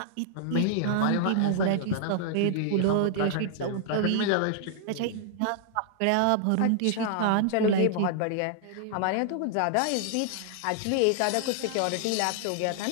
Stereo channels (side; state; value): both; different; correlation -0.01